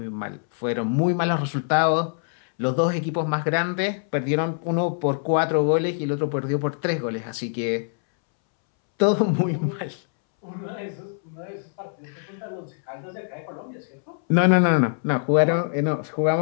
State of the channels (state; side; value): silent; right; 62 dB below the other